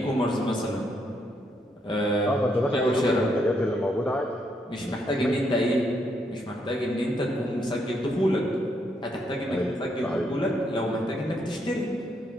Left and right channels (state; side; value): normal; both; correlation 0.76